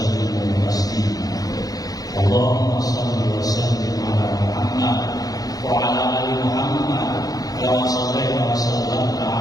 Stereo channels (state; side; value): late; right; 0.18 ms